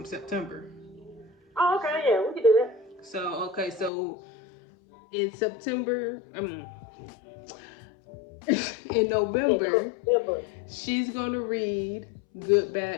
September. Oh, okay, yeah, we can do that. So in September, in November, she's gonna read Good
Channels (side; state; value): right; drops out; at 3.9 s